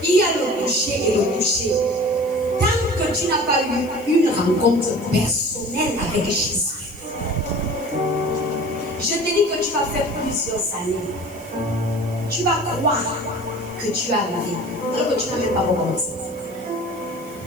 il y a le toucher et le toucher. Tant que tu n'as pas eu une rencontre personnelle avec Jésus, je te dis que tu vas faire plusieurs années. Tu vas croire que tu as arrivé, alors que tu n'as même pas recommencé.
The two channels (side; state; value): right; noise; hiss, 22 dB below the sound